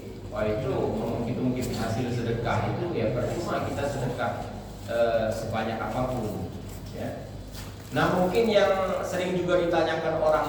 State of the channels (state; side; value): identical; both; correlation 1.00